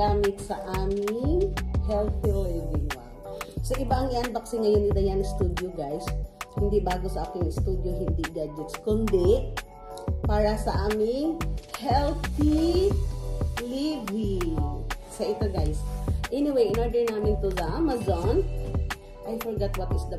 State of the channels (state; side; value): identical; both; correlation 1.00